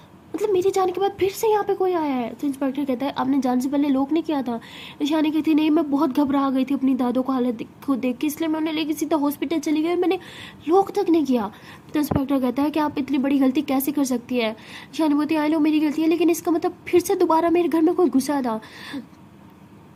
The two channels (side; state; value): both; identical; correlation 1.00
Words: मेरे जाने के बाद फिर से यहाँ पे कोई आया है। तो इंस्पेक्टर कहता है आपने जाने से पहले लॉक नहीं किया था? ईशानी कहती नहीं, मैं बहुत घबरा गई थी अपनी दादो को हालत को देख के, इसलिए मैं उन्हें लेके सीधा हॉस्पिटल चली गई, मैंने लॉक तक नहीं किया। तो इंस्पेक्टर कहता है कि आप इतनी बड़ी गलती कैसे कर सकती है? ईशानी बोलती आई लो मेरी गलती है, लेकिन इसका मतलब फिर से दोबारा मेरे घर में कोई घुसा था